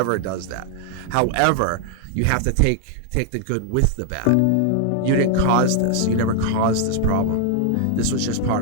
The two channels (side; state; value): both; different; correlation 0.00